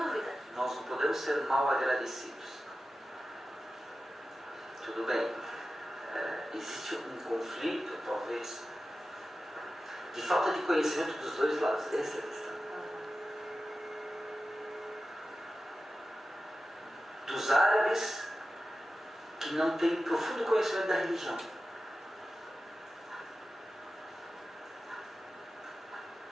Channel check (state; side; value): normal; both; correlation 0.94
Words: Nós não podemos ser mal agradecidos. Tudo bem, existe um conflito, talvez, de falta de conhecimento dos dois lados. Essa é a questão. Dos árabes que não têm profundo conhecimento da religião.